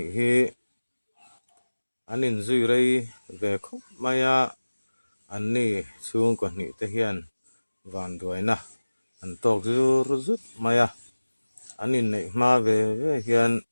hi anin zui rei ve khop maya an ni chung ko hnih te hian van duaina an tok zur zut maya anin nei hma ve ve hian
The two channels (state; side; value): inverted; both; correlation -1.00